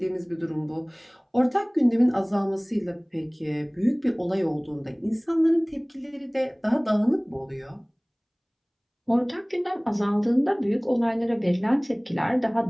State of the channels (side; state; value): both; identical; correlation 1.00